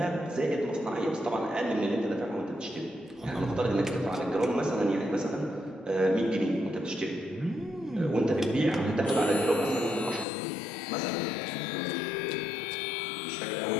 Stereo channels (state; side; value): drops out; right; at 10.2 s